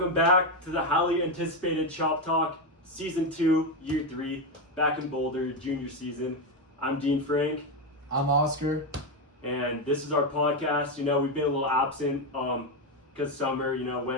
back to the highly anticipated Chop Talk Season 2, Year 3, back in Boulder, junior season. I'm Dean Frank. I'm Oscar. And this is our podcast. You know, we've been a little absent because summer,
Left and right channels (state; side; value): normal; both; correlation 0.09